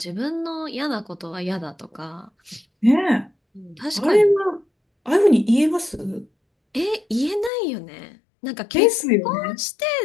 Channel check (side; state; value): right; drops out; at 7.5 s